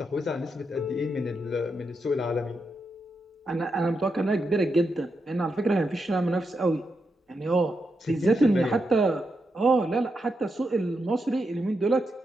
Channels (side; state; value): both; normal; correlation 0.84